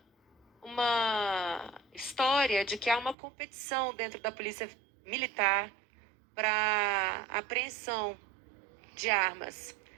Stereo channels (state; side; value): drops out; left; at 3.2 s